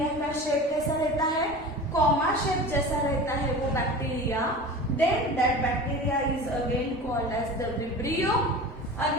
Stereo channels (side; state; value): both; normal; correlation 0.34